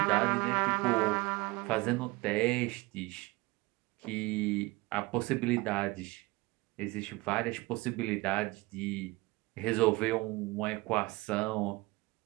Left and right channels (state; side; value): quieter; left; 22.7 dB